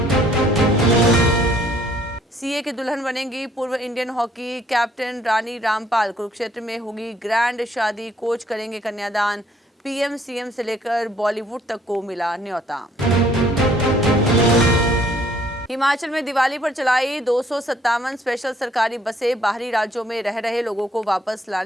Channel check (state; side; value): normal; both; correlation 0.63